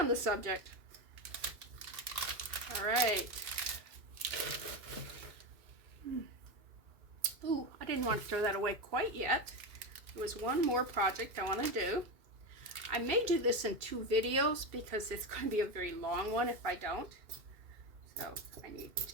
the subject. All right. Ooh, I didn't want to throw that away quite yet. There was one more project I want to do. I may do this in 2 videos because it's going to be a very long one if I don't. So I need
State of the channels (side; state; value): left; late; 2.7 ms